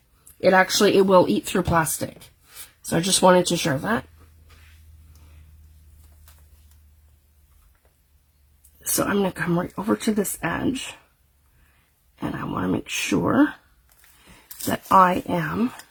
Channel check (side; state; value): both; identical; correlation 1.00